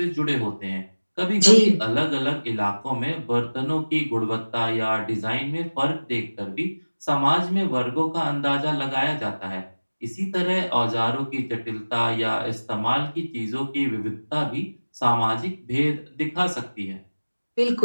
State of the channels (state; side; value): inverted; both; correlation -1.00